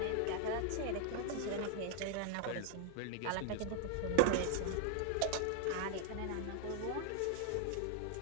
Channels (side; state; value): both; different; correlation 0.01